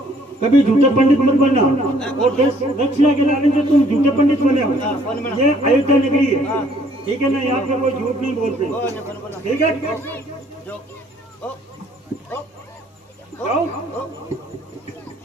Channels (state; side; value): normal; both; correlation 0.62